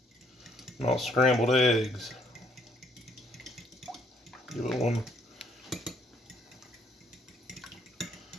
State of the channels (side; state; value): both; normal; correlation 0.67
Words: not scrambled eggs. Give it one